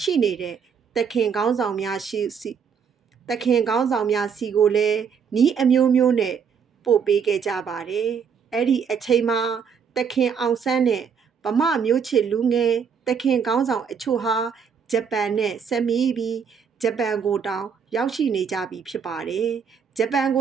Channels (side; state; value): left; quieter; 6.7 dB